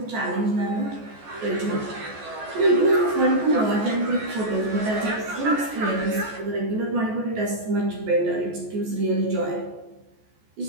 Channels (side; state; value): left; late; 14 ms